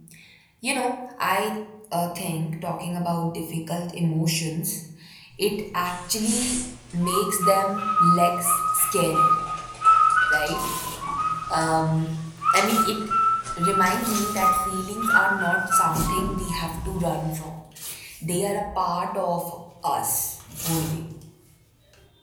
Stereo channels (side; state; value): both; identical; correlation 1.00